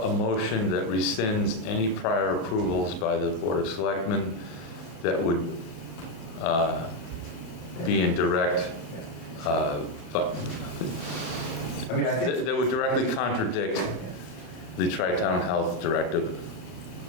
a motion that rescinds any prior approvals by the Board of Selectmen that would be in direct, I mean, I think that would directly contradict the Tri-Town Health Directive?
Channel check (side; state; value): right; late; 30 ms